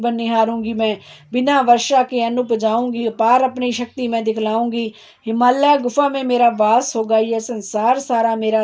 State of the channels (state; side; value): identical; both; correlation 1.00